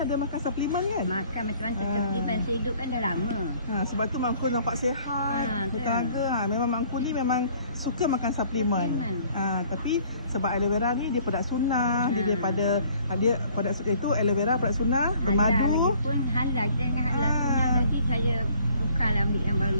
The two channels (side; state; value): both; inverted; correlation -0.58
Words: ada makan suplemen kan? Makan macam-macam suplemen, saya hidup kan dah lama. Sebab tu Mangku nampak sihat, bertenaga. Memang Mangku ni memang suka makan suplemen. Tapi sebab aloe vera ni dia produk sunnah, dia daripada dia produk itu aloe vera produk sunnah, bermadu. Lagipun halal, kita dengan halal sunnah nanti saya bukanlah ambil yang baru